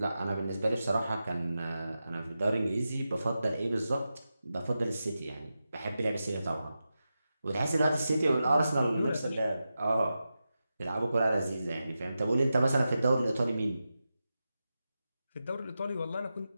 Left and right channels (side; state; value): both; inverted; correlation -0.91